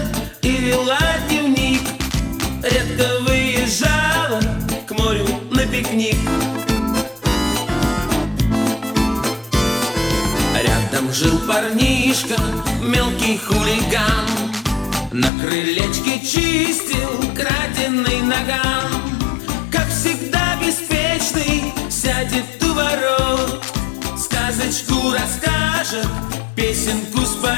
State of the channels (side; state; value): right; drops out; at 15.3 s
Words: и вела дневник, редко выезжала к морю на пикник. Рядом жил парнишка, мелкий хулиган, на крылечке чистил краденый наган. Как всегда беспечный, сядет у ворот, сказочку расскажет, песенку